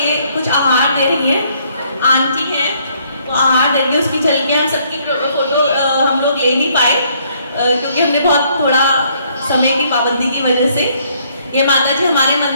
कुछ आहार दे रही है, आंटी है तो आहार देंगे, उसकी झलकियाँ हम सबकी फोटो हम लोग ले नहीं पाए क्योंकि हमने बहुत थोड़ा समय की पाबंदी की वजह से। ये माता जी हमारे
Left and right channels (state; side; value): inverted; both; correlation -0.66